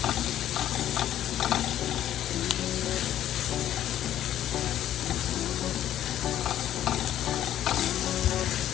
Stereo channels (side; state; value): right; quieter; 11.8 dB